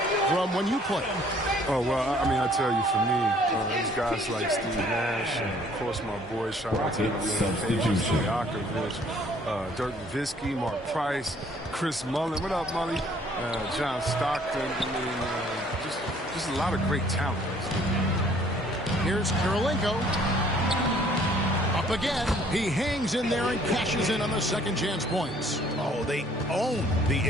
from when you played? Oh, well, I mean, I tell you, for me, there's guys like Steve Nash, and of course my boy, shout out to Stojakovic, Dirk Nowitzki, Mark Price, Chris Mullin. What up, Mully? John Stockton. I mean, just a lot of great talent. Here's Kirilenko. Up again. He hangs in there and cashes in on the second chance points. Oh, they own the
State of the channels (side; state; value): both; normal; correlation 0.59